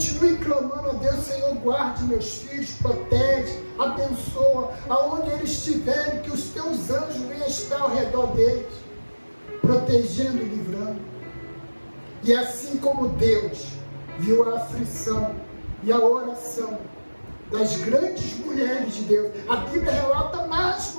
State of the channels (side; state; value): both; inverted; correlation -1.00